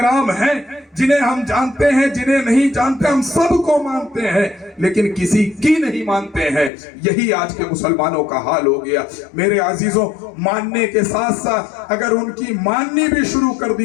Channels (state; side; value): drops out; right; at 6.7 s